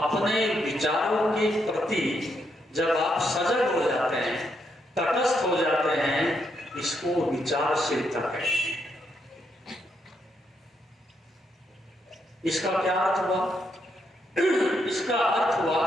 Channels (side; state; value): both; normal; correlation 0.78